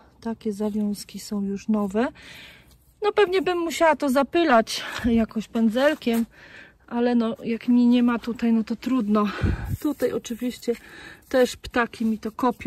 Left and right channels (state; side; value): identical; both; correlation 1.00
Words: takie zawiązki są już nowe. No pewnie bym musiała to zapylać jakoś pędzelkiem, ale no jak mi nie ma tutaj, no to trudno. Tutaj oczywiście też ptaki mi to